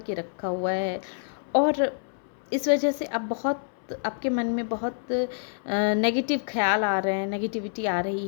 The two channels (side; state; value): right; silent; 60 dB below the other